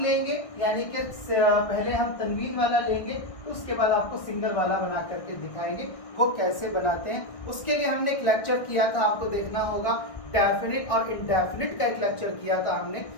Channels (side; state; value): right; late; 1.6 ms